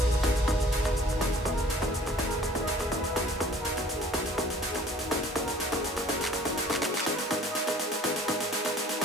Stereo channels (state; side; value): normal; both; correlation 0.52